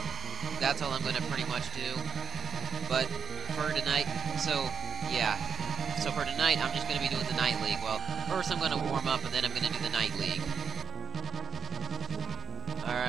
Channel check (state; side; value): quieter; left; 6.9 dB